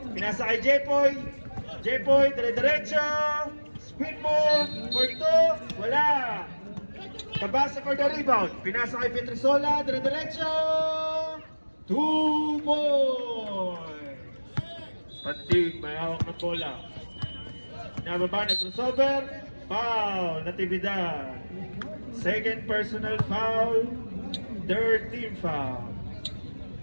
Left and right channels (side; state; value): both; inverted; correlation -1.00